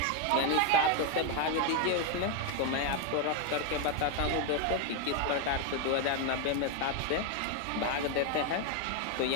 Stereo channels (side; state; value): both; different; correlation 0.01